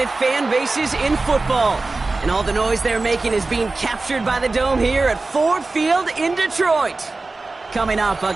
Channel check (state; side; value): quieter; left; 3.5 dB